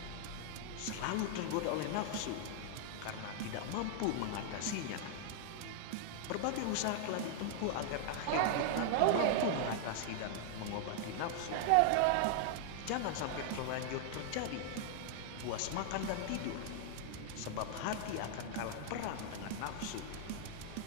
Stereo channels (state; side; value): different; both; correlation -0.01